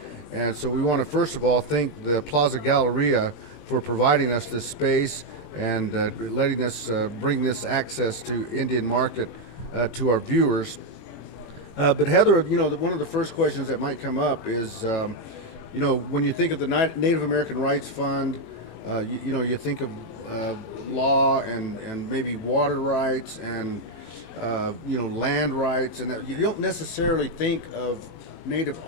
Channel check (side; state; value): right; late; 20 ms